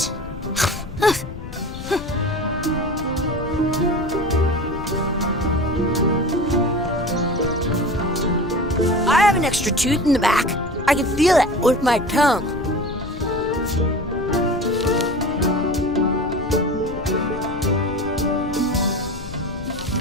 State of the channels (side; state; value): left; noise; rumble, 11 dB below the sound